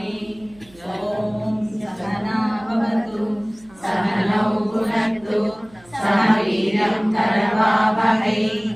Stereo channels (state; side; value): noise; right; hum, 26 dB below the sound